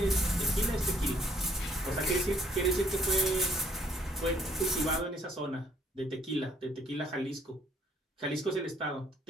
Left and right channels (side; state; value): both; normal; correlation 0.63